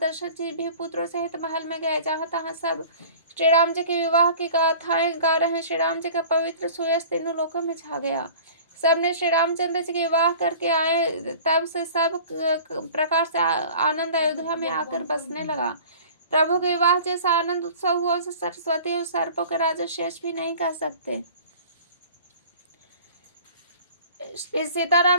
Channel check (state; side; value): inverted; both; correlation -0.44